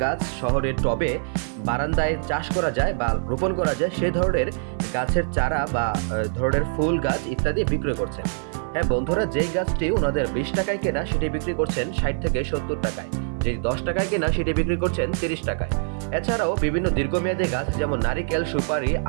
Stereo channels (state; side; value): silent; left; 57 dB below the other